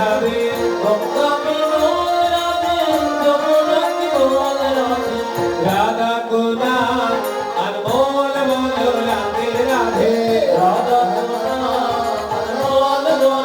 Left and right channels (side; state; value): both; identical; correlation 1.00